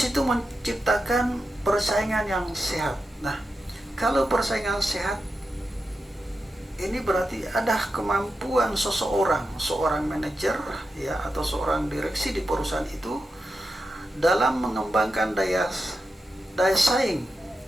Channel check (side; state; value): both; normal; correlation 0.89